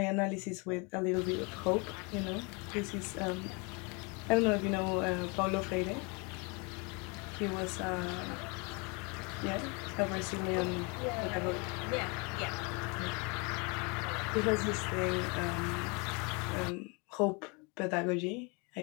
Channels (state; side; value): quieter; right; 31.0 dB